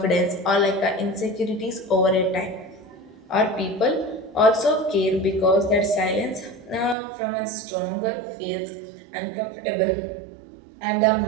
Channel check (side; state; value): left; drops out; at 7.0 s